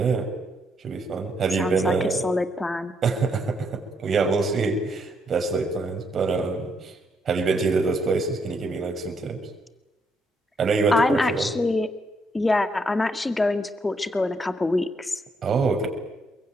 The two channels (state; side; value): normal; both; correlation 0.75